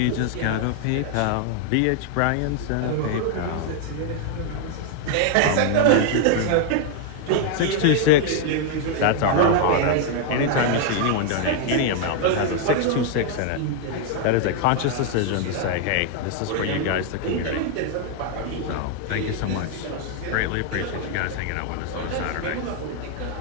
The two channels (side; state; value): both; different; correlation 0.00